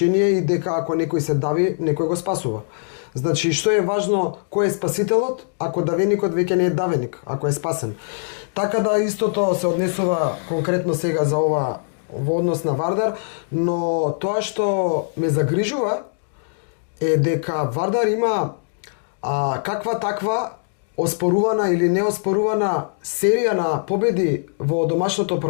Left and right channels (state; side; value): silent; right; digital silence